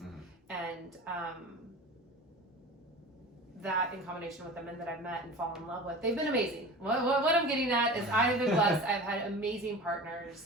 Mm-hmm. And that, in combination with the men that I've met and fallen in love with, they've been amazing. What I'm getting at is I've been blessed. I've had amazing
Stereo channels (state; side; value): normal; both; correlation 0.35